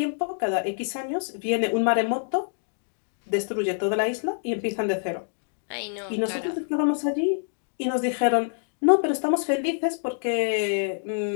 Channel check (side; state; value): right; silent; digital silence